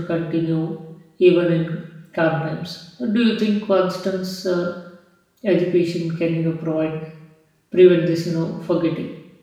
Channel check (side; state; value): both; identical; correlation 1.00